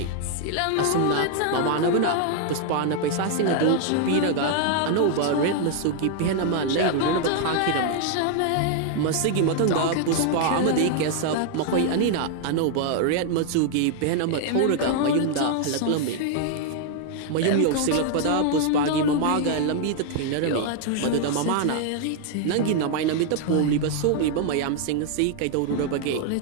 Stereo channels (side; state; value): both; different; correlation 0.00